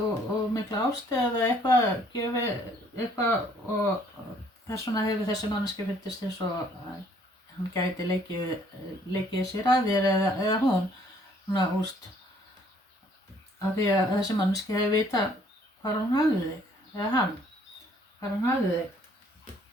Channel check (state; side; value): normal; both; correlation 0.62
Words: mikla ástæð eða eitthvað gefið eitthvað og þess vegna hefur þessi manneskja fundist eins og hann gæti leikið sér að þér eða hún svona úst af því að þessi manneskja hefur vitað hvar hún hafði þig eða hann hvar hún hafði þig